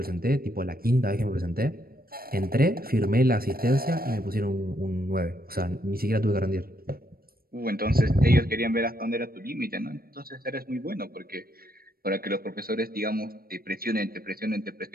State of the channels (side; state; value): left; late; 0.43 ms